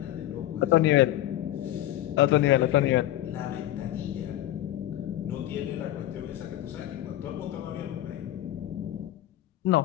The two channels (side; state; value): right; quieter; 14.0 dB